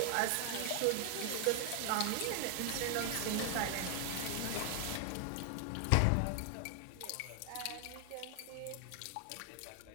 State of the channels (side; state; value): both; different; correlation 0.00